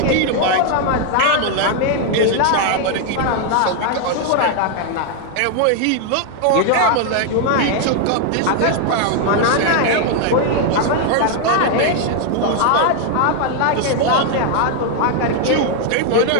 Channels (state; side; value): different; both; correlation 0.00